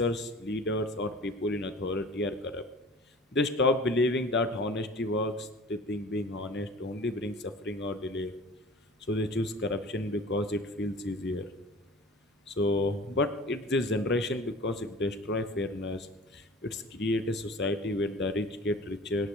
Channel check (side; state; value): both; normal; correlation 0.42